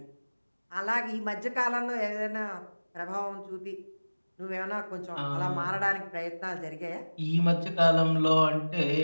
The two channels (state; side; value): inverted; both; correlation -1.00